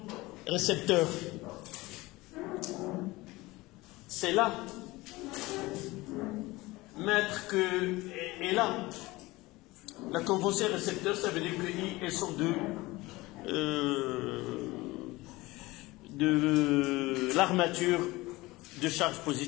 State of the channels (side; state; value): right; quieter; 20.7 dB